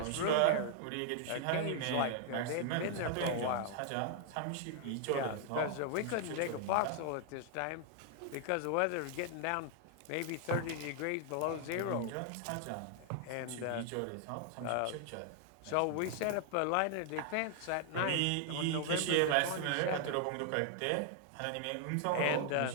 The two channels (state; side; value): different; both; correlation 0.00